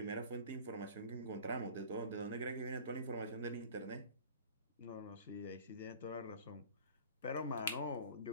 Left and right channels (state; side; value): inverted; both; correlation -0.42